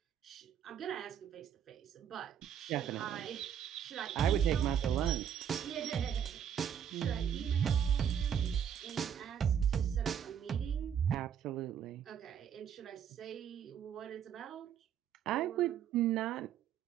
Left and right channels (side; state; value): left; quieter; 8.8 dB